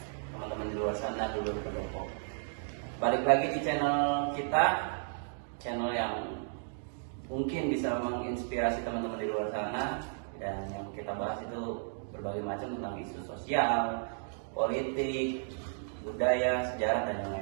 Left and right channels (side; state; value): left; silent; digital silence